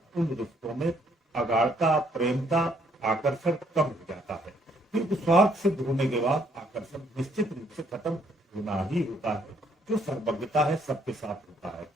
उन रिश्तों में अगाढ़ता, प्रेमता, आकर्षण कम हो जाता है। क्योंकि स्वार्थ सिद्ध होने के बाद आकर्षण निश्चित रूप से खत्म होना ही होता है। जो सर्वज्ञता है सबके साथ होता है।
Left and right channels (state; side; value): normal; both; correlation 0.68